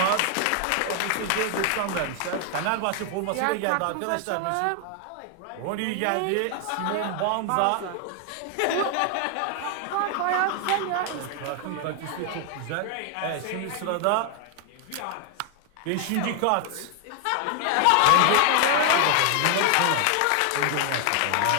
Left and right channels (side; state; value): both; different; correlation 0.00